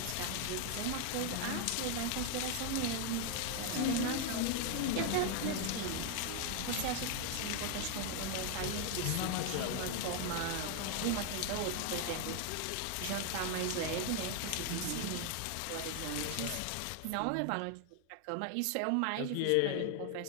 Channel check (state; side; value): different; both; correlation 0.00